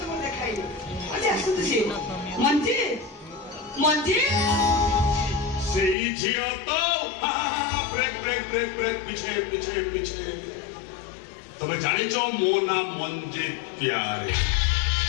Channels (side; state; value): right; drops out; at 6.0 s